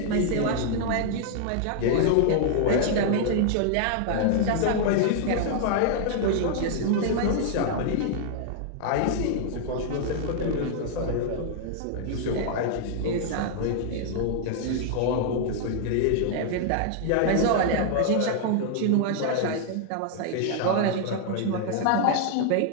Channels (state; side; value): different; both; correlation -0.01